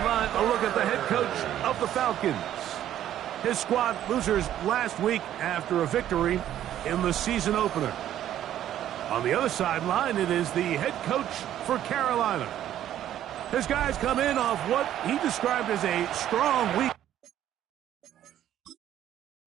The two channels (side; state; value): left; quieter; 11.6 dB